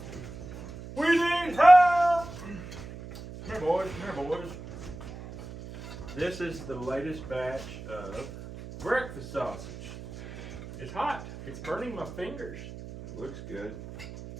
We need help! Come here, boys. Come here, boys. This is the latest batch of breakfast sausage. It's hot. It's burning my fingers. It looks good.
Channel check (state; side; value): noise; right; hum, 12 dB below the sound